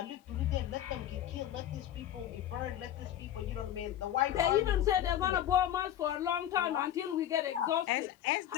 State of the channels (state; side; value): quieter; right; 11.3 dB